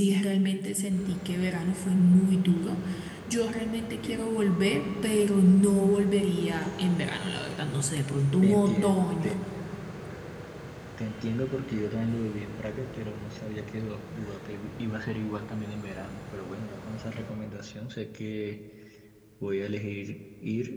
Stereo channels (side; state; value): both; identical; correlation 1.00